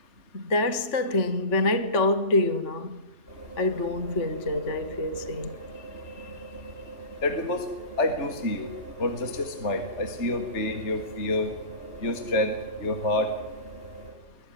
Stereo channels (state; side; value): late; right; 3.4 ms